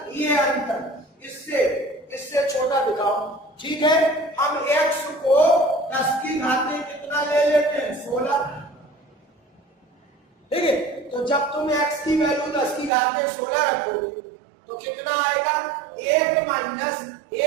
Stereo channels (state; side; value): drops out; left; at 12.9 s